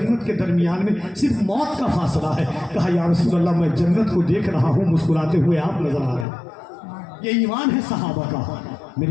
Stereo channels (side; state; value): right; drops out; at 6.2 s